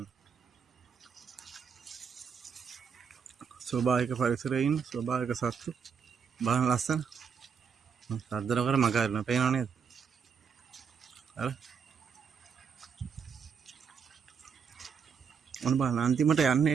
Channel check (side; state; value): left; quieter; 6.5 dB